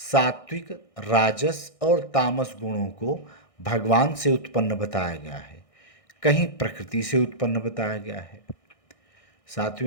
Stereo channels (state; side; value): late; right; 1.6 ms